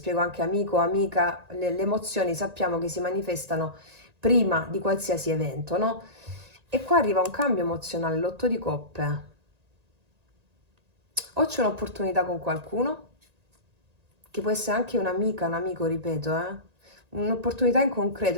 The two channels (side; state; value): left; late; 1.8 ms